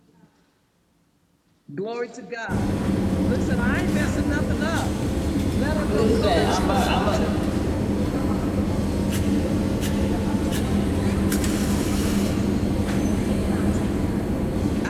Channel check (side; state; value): both; identical; correlation 1.00